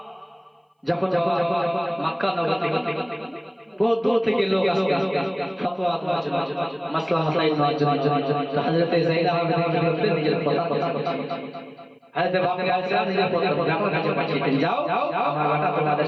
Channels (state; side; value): identical; both; correlation 1.00